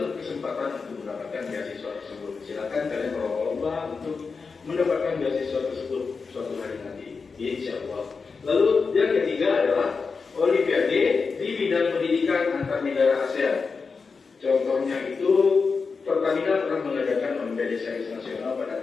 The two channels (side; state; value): right; quieter; 4.9 dB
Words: berkesempatan untuk mendapatkan beasiswa tersebut. Silakan kalian berlomba untuk mendapatkan beasiswa tersebut suatu hari nanti, insya Allah. Lalu yang ketiga adalah Olimpiade di bidang pendidikan antar negara ASEAN. Contohnya itu Pertamina pernah mengadakan Olimpiade Sains Nasional pada